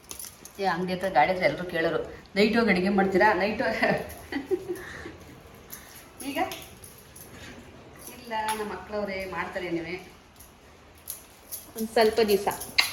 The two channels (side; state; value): both; identical; correlation 1.00